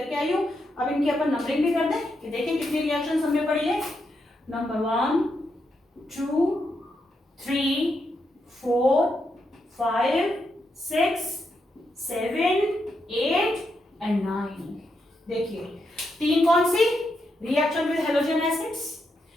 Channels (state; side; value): normal; both; correlation 0.82